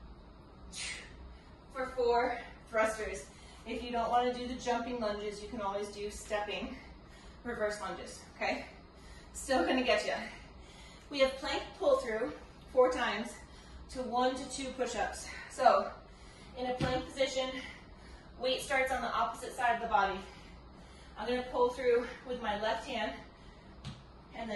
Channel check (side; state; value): both; identical; correlation 1.00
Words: for 4 thrusters. If you don't want to do the jumping lunges, you can always do stepping reverse lunges, okay? Still gonna get you. We have plank pull through 4 times to 1 to 2 push-ups. So, in a plank position, weight starts on the opposite side of the body. I'm gonna pull through with my left hand and